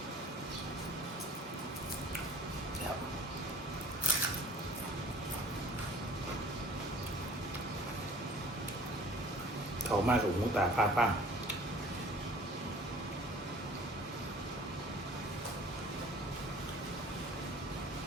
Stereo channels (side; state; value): both; normal; correlation 0.49